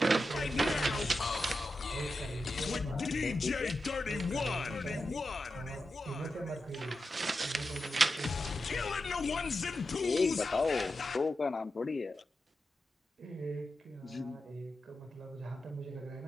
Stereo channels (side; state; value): both; normal; correlation 0.89